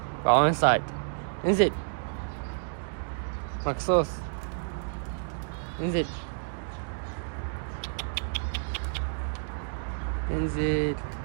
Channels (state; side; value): silent; left; digital silence